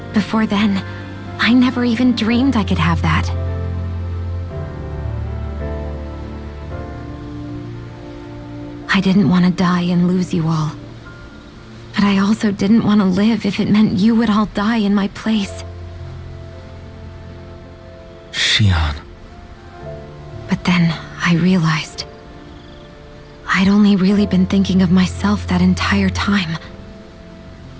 Before then, I never even dreamed I could have that. I didn't want to die and lose you all. But I also didn't want to live if it meant you would all die in my place. Shion. But then I realized I'd only really been thinking of myself that entire time.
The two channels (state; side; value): identical; both; correlation 1.00